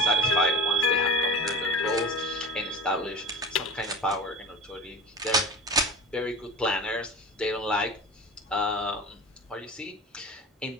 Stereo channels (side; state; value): both; normal; correlation 0.33